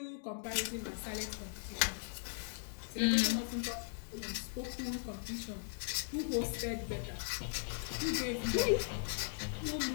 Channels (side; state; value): right; silent; digital silence